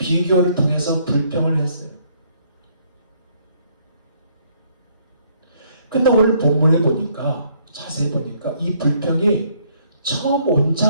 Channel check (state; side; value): inverted; both; correlation -0.67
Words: 통해서 불평을 했어요. 근데 오늘 본문에 보니까 자세히 보니까 이 불평이 처음 온